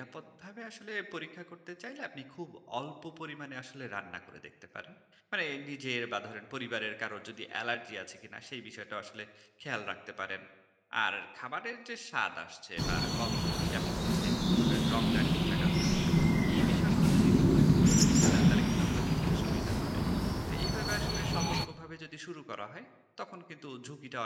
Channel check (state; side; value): identical; both; correlation 1.00